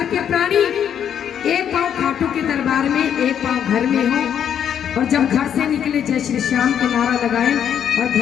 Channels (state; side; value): quieter; right; 8.9 dB